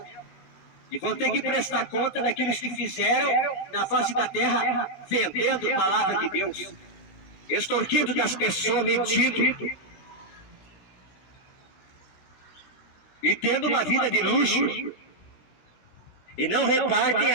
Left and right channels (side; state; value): right; late; 16 ms